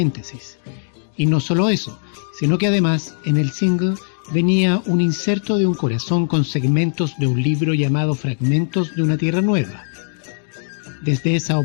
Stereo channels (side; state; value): right; silent; 66 dB below the other